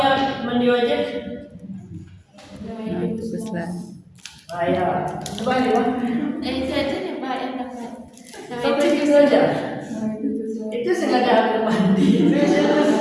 mandi wajib? Ah ya, coba ya. Itu aja nih Pak yang dapat. Sampai gitu aja. Itu sengaja aku mandi.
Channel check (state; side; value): identical; both; correlation 1.00